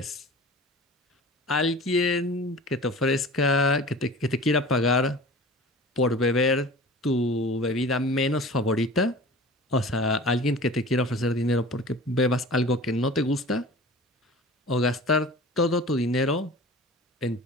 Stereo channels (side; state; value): both; normal; correlation 0.39